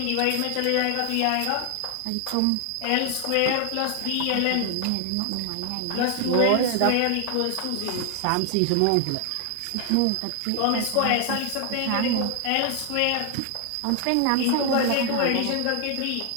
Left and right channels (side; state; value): both; different; correlation 0.00